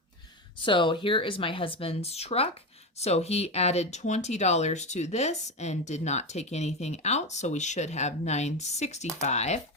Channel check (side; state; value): both; normal; correlation 0.16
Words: So here is my husband's truck. So he added $20 to this and did not take anything out. So we should have $965.